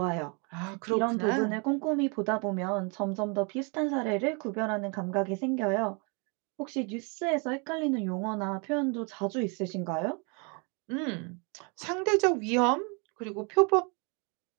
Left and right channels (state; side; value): quieter; left; 33.8 dB